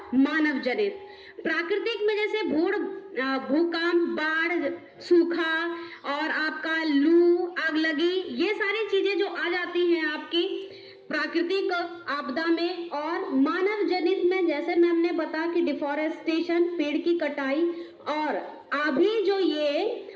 मानव जनित। प्राकृतिक में जैसे भूकंप, बाढ़, सूखा और आपका लू, आग लगी, ये सारी चीजें जो आ जाती हैं आपकी प्राकृतिक आपदा में। और मानव जनित में जैसे मैम ने बताया कि डिफॉरेस्टेशन, पेड़ की कटाई, और अभी जो ये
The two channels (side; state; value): both; identical; correlation 1.00